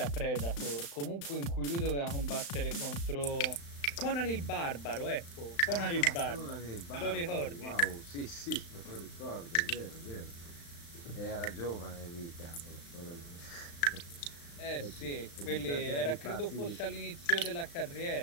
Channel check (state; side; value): late; right; 35 ms